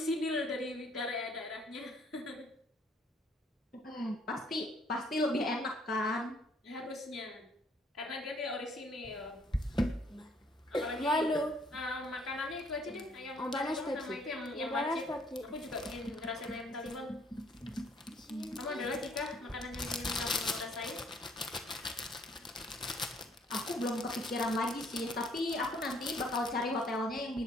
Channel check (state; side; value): normal; both; correlation 0.64